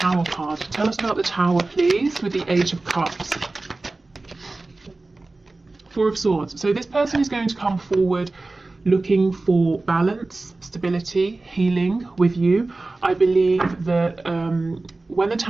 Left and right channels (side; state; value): left; quieter; 3.2 dB